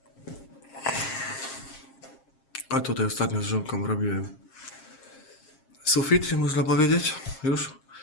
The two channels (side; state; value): right; late; 7.5 ms